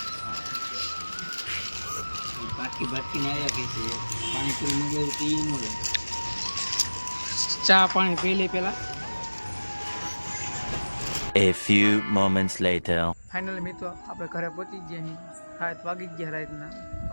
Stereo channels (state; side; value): inverted; both; correlation -1.00